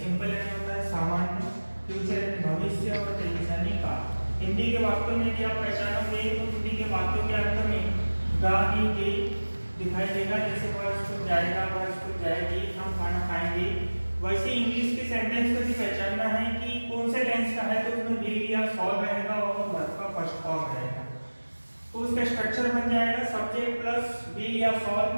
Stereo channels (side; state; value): both; inverted; correlation -1.00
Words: यानी होता है सामान्य, फ्यूचर भविष्य और टेंस यानी का। हिंदी के वाक्यों में भी आप पहचानोगे तो हिंदी के वाक्यों के अंत में गा ही गे दिखाई देगा। जैसे वह स्कूल जाएगा, वह स्कूल जाएगी, हम खाना खाएंगे। वैसे इंग्लिश के सेंटेंस को भी पहचानना है कि कौन से टेंस का है, तो उसमें विल या सॉल रहेगा और वर्ब का फर्स्ट फॉर्म रहेगा। तो उसका स्ट्रक्चर बन जाएगा सब्जेक्ट प्लस विल या सॉल